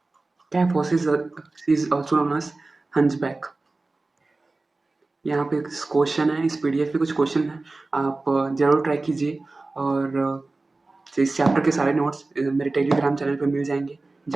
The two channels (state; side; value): quieter; left; 3.3 dB